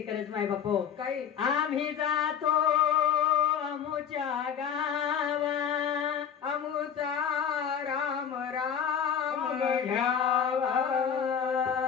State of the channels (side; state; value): right; quieter; 8.1 dB